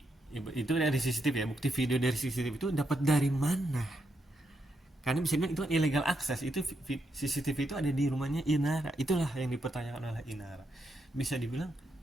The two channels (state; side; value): normal; both; correlation 0.81